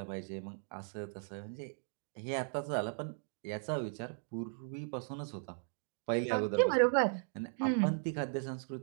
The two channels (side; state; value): left; silent; digital silence